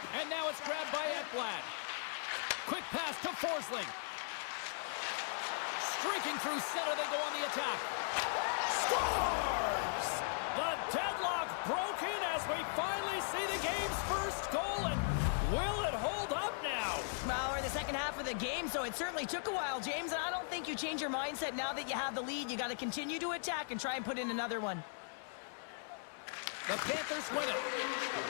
And now it's grabbed by Ekblad. Quick pass to Forsling. Streaking through center, they go on the attack. Scores! The deadlock broken as we finally see the game's first goal, and will it hold up now? Well, we're in the second half of the game, so it certainly took a while, James, and I don't think you change your mindset now that you have the lead. You got to continue to attack and try and put in another one. The Panthers win it.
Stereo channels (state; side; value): silent; right; digital silence